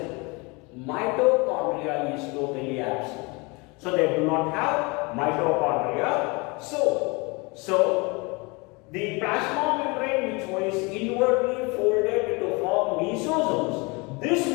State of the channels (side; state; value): right; quieter; 27.6 dB